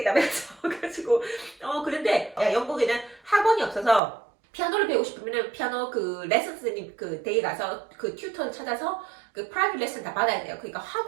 그래가지고 그런데 영국에는 학원이 없어서 피아노를 배우고 싶으면은 피아노 그 레슨 선생님 그 댁에 가서 그 튜터를 찾아서 그 프라이빗 레슨 다 받아야 돼요. 그러니까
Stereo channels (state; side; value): drops out; left; at 4.0 s